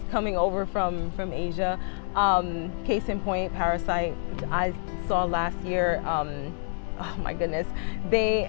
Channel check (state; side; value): silent; right; 60 dB below the other